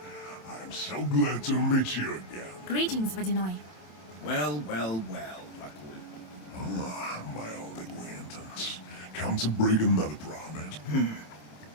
I'm so glad to meet you again. Greetings, Vodinoi. Well, well, well, Vakul. Ah, my old acquaintance. Come to break another promise.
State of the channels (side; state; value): right; late; 27 ms